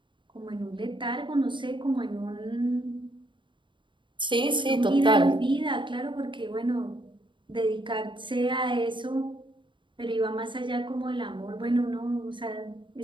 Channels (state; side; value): late; left; 0.23 ms